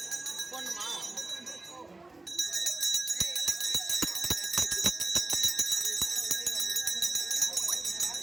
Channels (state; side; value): quieter; left; 3.1 dB